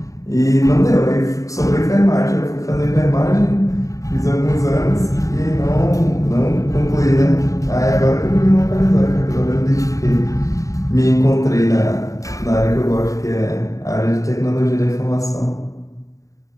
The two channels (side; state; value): right; late; 0.16 ms